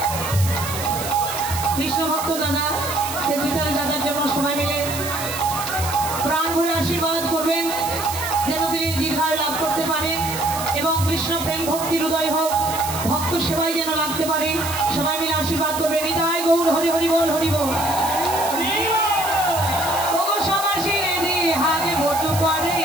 কৃষ্ণ ভক্ত দাদা, সেক্রেটারি দাদার জন্য সবাই মিলে প্রাণ ভরে আশীর্বাদ করবেন, যেন তিনি দীর্ঘায়ু লাভ করতে পারেন এবং কৃষ্ণ প্রেম ভক্তির হৃদয় হোক, ভক্ত সেবাই যেন লাগতে পারে। সবাই মিলে আশীর্বাদ করবেন। নিতাই গৌর হরি হরি বল, হরি বল।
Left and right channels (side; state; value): right; noise; hiss, 8 dB below the sound